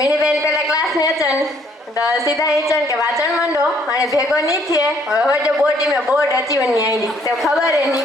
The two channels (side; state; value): both; normal; correlation 0.65